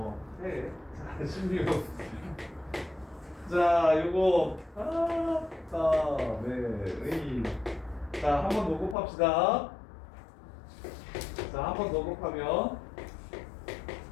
해. 자, 16. 자, 요거 네. 자, 한 번 더 곱합시다. 자, 한 번 더 곱하면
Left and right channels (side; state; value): right; drops out; at 9.0 s